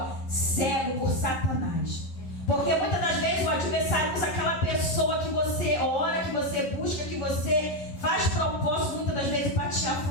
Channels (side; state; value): right; late; 11 ms